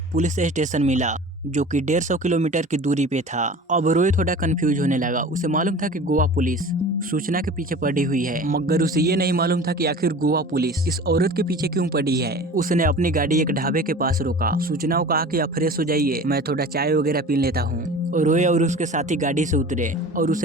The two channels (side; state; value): both; normal; correlation 0.40